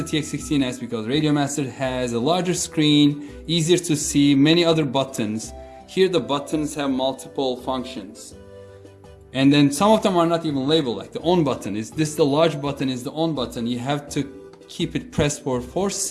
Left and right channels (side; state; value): both; identical; correlation 1.00